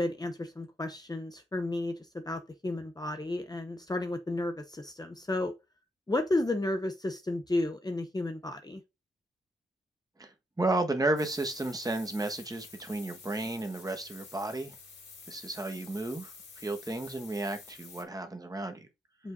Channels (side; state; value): both; normal; correlation 0.78